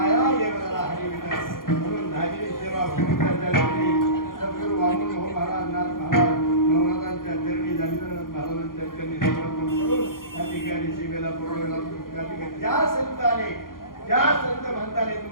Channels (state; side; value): late; right; 0.91 ms